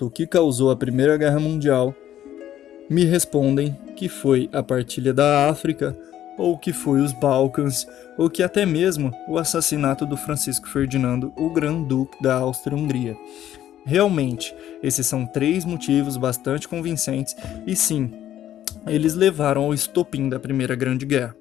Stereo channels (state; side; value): quieter; right; 11.7 dB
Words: o que causou a Primeira Guerra Mundial, me respondem que foi a partilha da África, ou que foi os Balcãs, ou que até mesmo o assassinato do Francisco Ferdinando, o Grão-Duque da Áustria-Hungria. Realmente, esses são três motivos bastante convincentes e sim, eles levaram ao estopim da Primeira Grande Guerra.